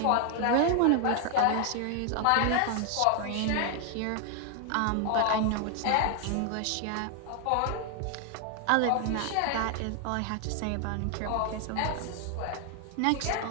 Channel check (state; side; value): different; both; correlation 0.00